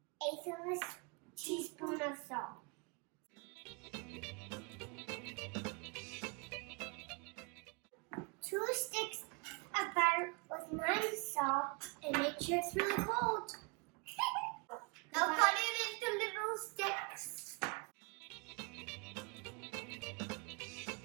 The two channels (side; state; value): left; quieter; 31.9 dB